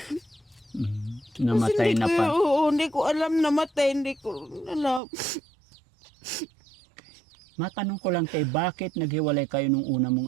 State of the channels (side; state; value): left; drops out; at 5.0 s